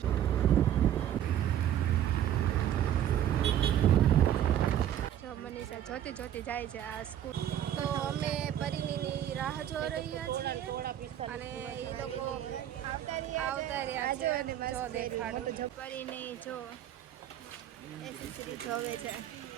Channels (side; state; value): left; quieter; 10.9 dB